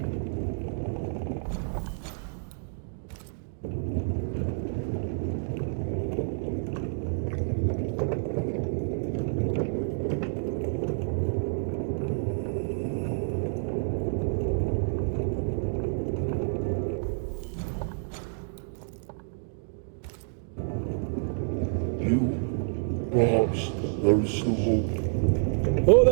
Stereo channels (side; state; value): left; silent; digital silence